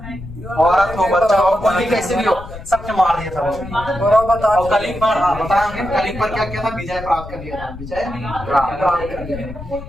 औरत हो, बच्चा हो, कोई कैसे भी हो, सबके मार दिया था वो। और कलिंग पर बताएंगे, कलिंग पर क्या किया था? विजय प्राप्त कर लिया था। विजय प्राप्त कर लिया।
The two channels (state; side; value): noise; left; rumble, 13 dB below the sound